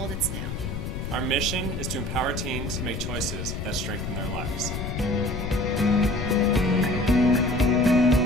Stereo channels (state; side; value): noise; left; rumble, 5 dB below the sound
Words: it's new. Our mission is to empower teens to make choices that strengthen their lives.